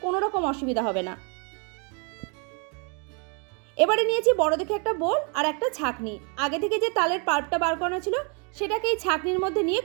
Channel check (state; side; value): quieter; left; 36.2 dB